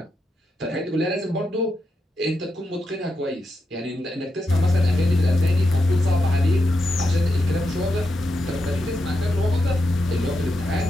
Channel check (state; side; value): normal; both; correlation 0.86